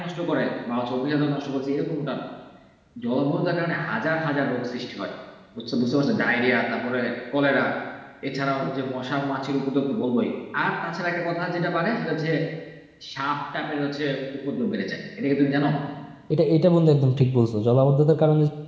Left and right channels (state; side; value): identical; both; correlation 1.00